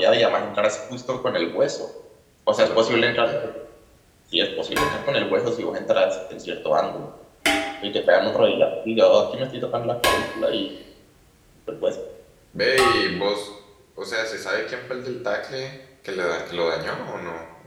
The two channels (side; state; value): both; identical; correlation 1.00